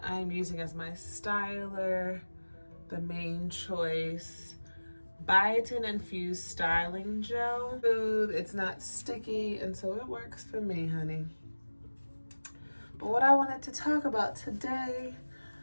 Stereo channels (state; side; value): inverted; both; correlation -1.00